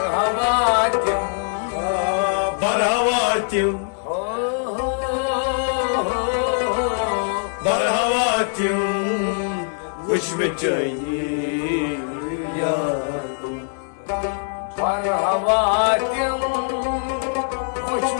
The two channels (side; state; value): right; silent; 64 dB below the other